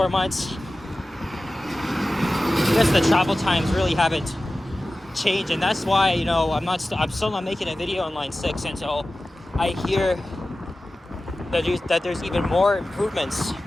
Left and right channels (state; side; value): normal; both; correlation 0.95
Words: months, I guess the travel times really haven't changed, and that's why, you know, I'm still not making a video on Line 6 until I hear that there's even more improvements.